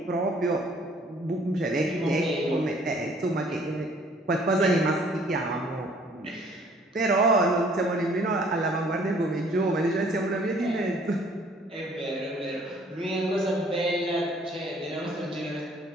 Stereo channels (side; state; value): both; normal; correlation 0.58